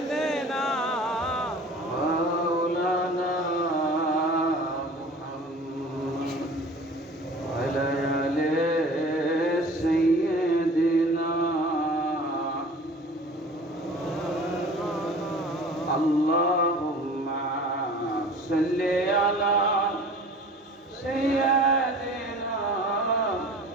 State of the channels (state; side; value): normal; both; correlation 0.43